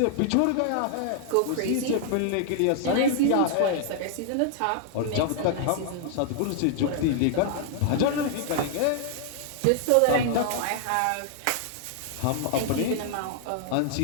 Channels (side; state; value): both; different; correlation 0.00